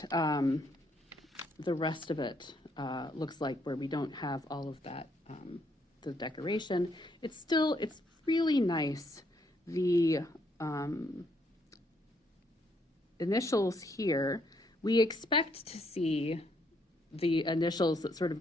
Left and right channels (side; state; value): both; normal; correlation 0.72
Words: the rest of it looks like, where we don't have all of that, the decoration. It's really nice. The initials here, we expect to see the initials that sort